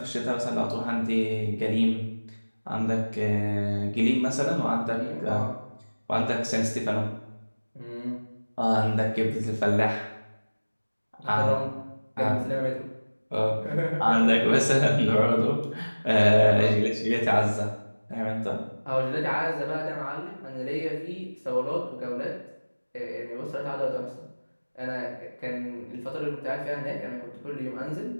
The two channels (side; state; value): both; inverted; correlation -1.00